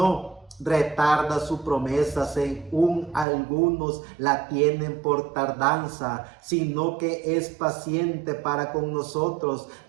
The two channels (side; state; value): left; drops out; at 3.2 s